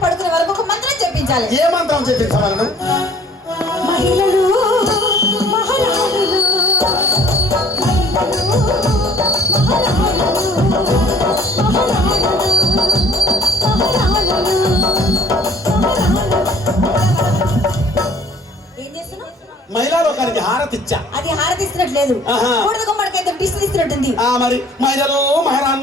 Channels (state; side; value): normal; both; correlation 0.55